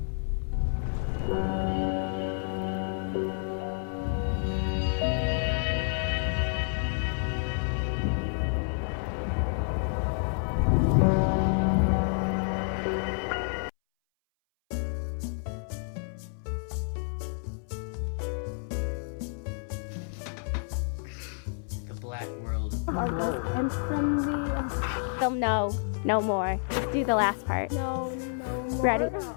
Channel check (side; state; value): right; silent; 58 dB below the other